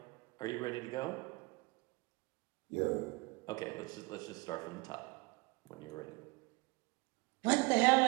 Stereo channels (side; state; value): left; quieter; 25.8 dB